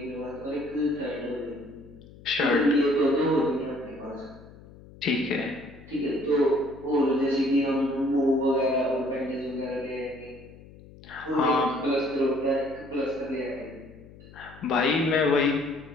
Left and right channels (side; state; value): left; noise; hum, 20 dB below the sound